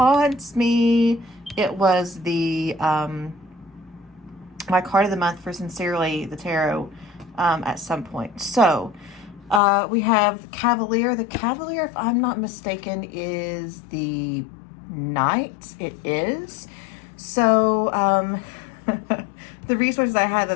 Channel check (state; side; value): drops out; right; at 9.6 s